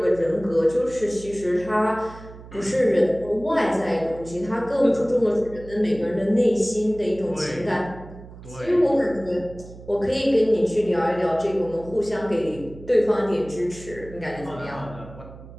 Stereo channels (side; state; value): right; noise; hum, 17 dB below the sound